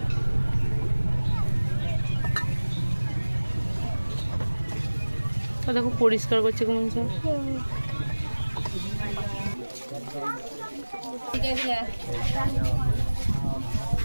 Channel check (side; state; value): both; inverted; correlation -1.00